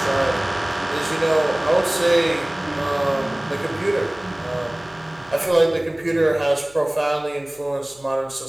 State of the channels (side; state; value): right; noise; hum, 28 dB below the sound